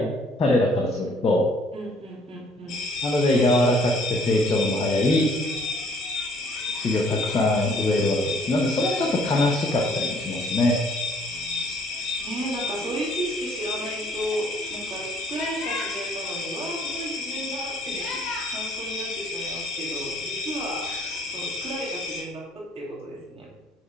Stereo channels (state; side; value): normal; both; correlation 0.60